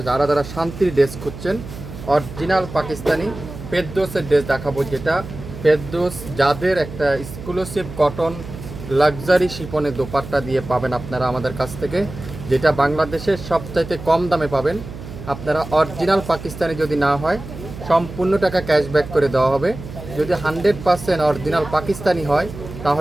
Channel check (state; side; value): noise; right; hum, 12 dB below the sound